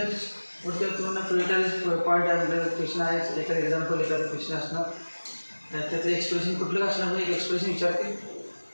पुढच्या तुम्हाला projectile point आहे, क्वेश्चन आहे, एखादं एक्झाम्पल एखादं क्वेश्चन असणार, त्याचं एक्सप्रेशन कुठलं असणार म्हणजे एक एक्सप्रेशन विचारते.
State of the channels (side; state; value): both; inverted; correlation -1.00